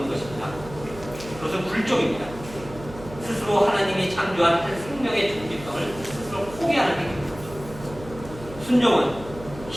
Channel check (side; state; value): right; noise; hum, 15 dB below the sound